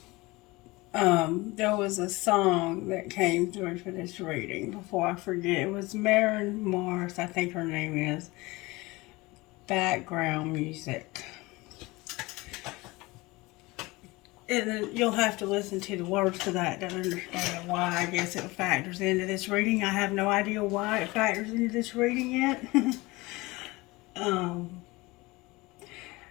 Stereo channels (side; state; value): right; quieter; 22.2 dB